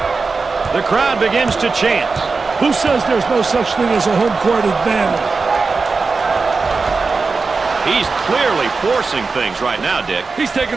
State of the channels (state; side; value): quieter; left; 4.3 dB